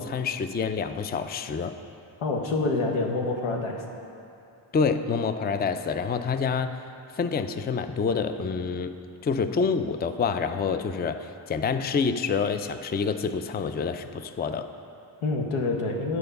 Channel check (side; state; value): right; quieter; 4.5 dB